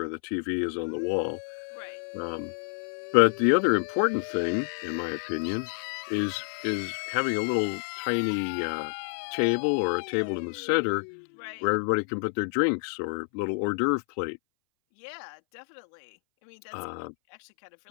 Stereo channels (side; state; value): right; silent; 59 dB below the other